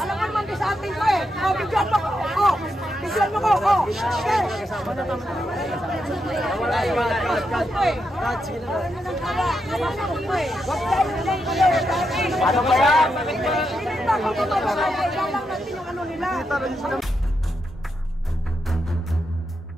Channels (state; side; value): normal; both; correlation 0.84